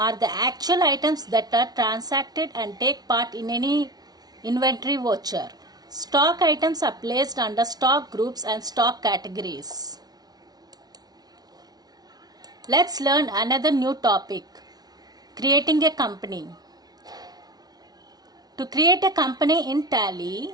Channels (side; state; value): left; late; 0.19 ms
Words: the actual items that are transacted and take part in any inventory voucher. Stock items are placed under stock groups and stock categories. Let's learn another new topic, creating a company. To create a company in Tally,